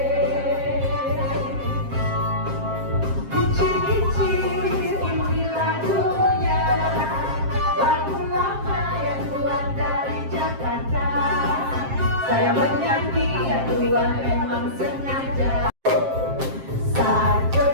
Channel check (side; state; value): left; late; 7.5 ms